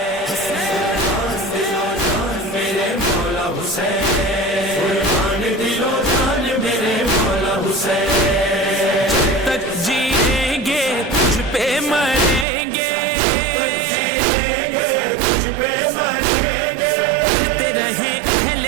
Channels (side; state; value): left; drops out; at 12.5 s